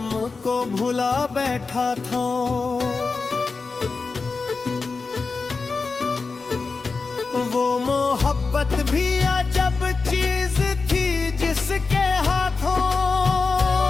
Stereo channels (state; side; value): quieter; right; 4.3 dB